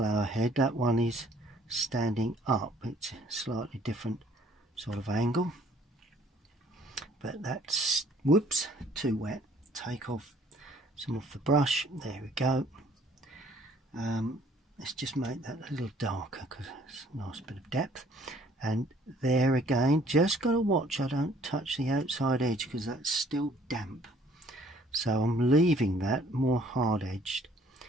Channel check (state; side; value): normal; both; correlation 0.59